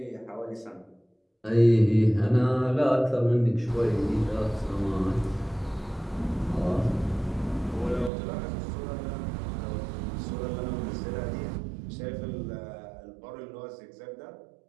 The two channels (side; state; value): left; drops out; at 8.1 s